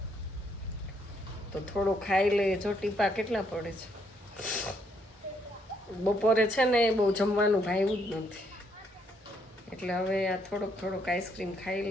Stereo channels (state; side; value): normal; both; correlation 0.72